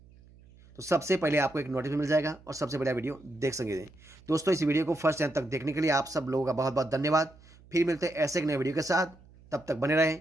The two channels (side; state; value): right; noise; hum, 25 dB below the sound